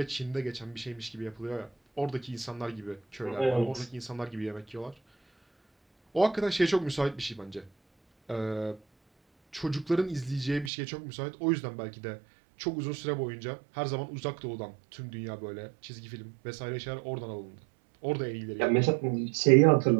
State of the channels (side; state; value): left; drops out; at 10.7 s